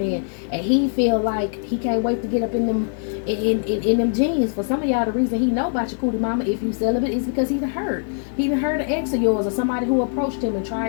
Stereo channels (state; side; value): silent; right; 64 dB below the other